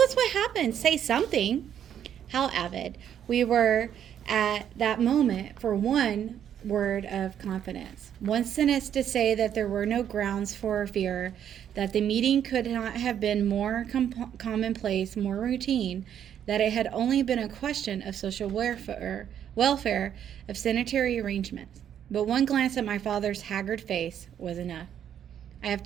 what happened. Say something. How avid we were at that moment for one word of confidence. One sentence to say that there were no grounds for fear, that the meeting could not have been more commonplace, more routine, that it had only been a question of social welfare, of sanitary arrangements. But one glance at my father's haggard face was enough. I have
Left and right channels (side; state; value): left; quieter; 9.5 dB